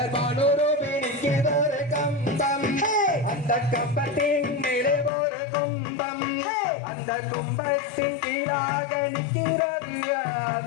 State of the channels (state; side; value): drops out; right; at 5.1 s